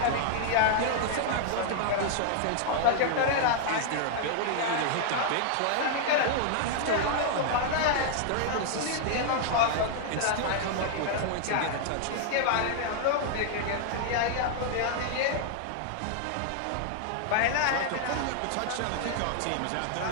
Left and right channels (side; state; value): both; different; correlation -0.01